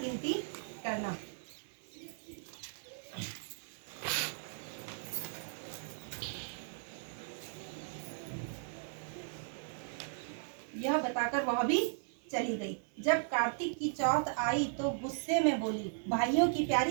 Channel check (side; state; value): left; silent; 53 dB below the other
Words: करना। यह बताकर वह भी चली गई। जब कार्तिक की चौथ आई तो गुस्से में बोली, भाइयों की